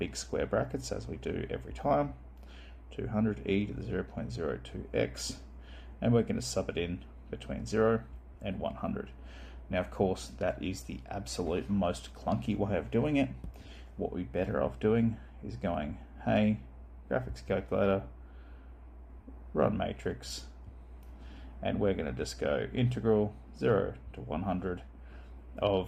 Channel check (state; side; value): identical; both; correlation 1.00